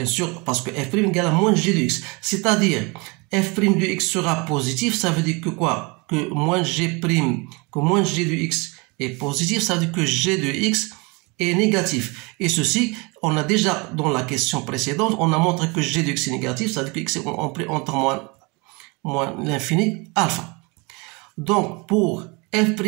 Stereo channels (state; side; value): quieter; left; 28.4 dB